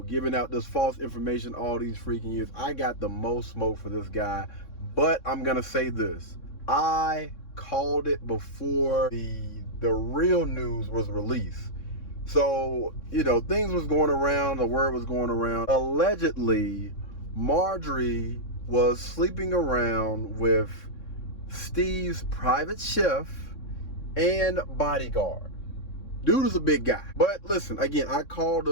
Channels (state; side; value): late; right; 3.6 ms